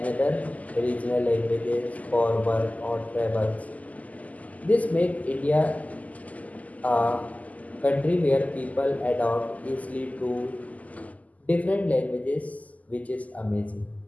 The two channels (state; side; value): late; right; 0.075 ms